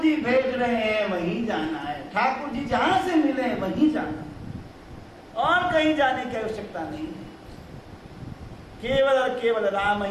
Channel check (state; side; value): identical; both; correlation 1.00